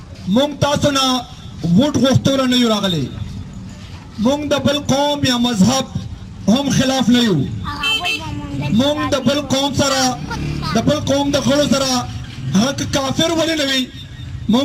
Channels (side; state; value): both; identical; correlation 1.00